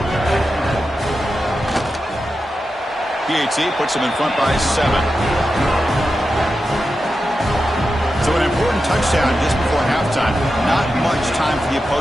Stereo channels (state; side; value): normal; both; correlation 0.90